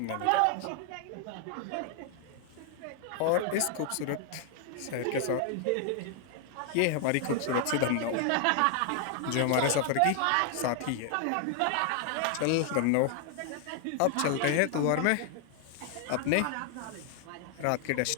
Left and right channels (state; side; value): different; both; correlation 0.00